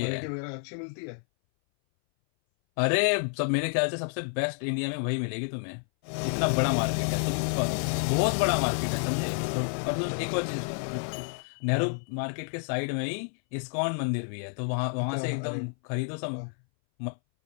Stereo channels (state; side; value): silent; right; 58 dB below the other